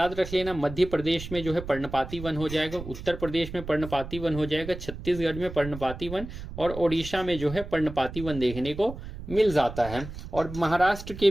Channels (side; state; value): right; noise; rumble, 11 dB below the sound